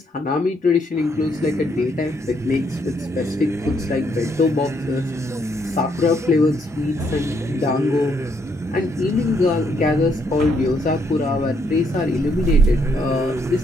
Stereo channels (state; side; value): normal; both; correlation 0.73